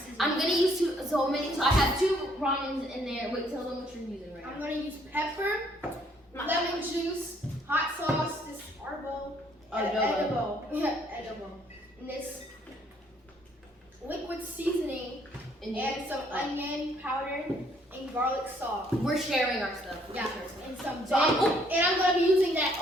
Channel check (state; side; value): normal; both; correlation 0.65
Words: I'm gonna use so I have 2 ramens in there. Wait, tell them what you're using right I'm now. gonna use pepper, lemon juice, hot sauce, this edible, and this liquid seasoning, and some onion powder and garlic salt. We're sharing our stuff. Yeah, and some So and I'm gonna be using that